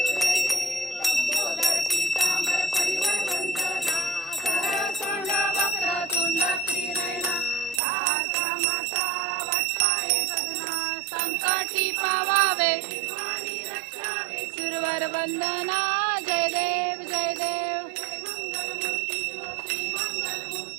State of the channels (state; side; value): drops out; left; at 7.8 s